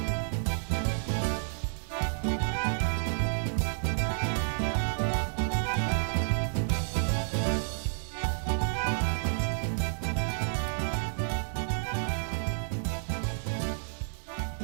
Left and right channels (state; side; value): silent; left; digital silence